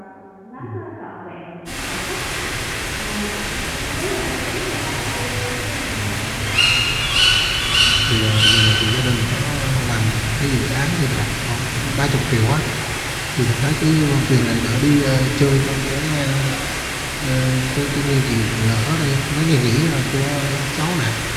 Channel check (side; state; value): both; identical; correlation 1.00